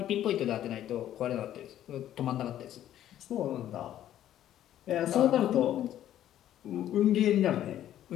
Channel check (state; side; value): quieter; right; 11.9 dB